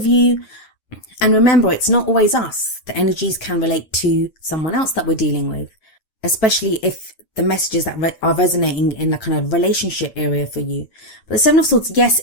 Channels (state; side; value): late; right; 9.4 ms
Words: you. And remember, it's not always us. The energies can relate to someone else that we're dealing with, especially if the messages that are resonating in the kind of relationship area for you. But the Seven of Swords, yes,